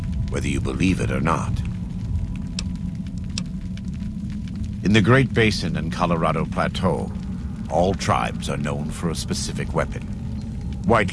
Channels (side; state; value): both; identical; correlation 1.00